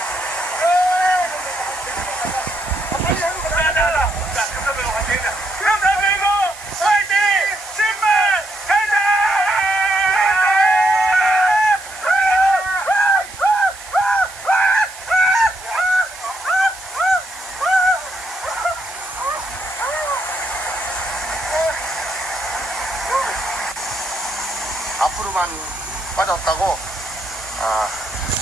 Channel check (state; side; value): noise; right; hiss, 17 dB below the sound